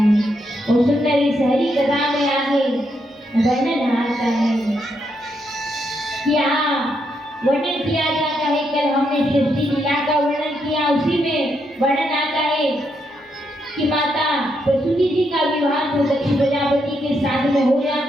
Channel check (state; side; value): normal; both; correlation 0.79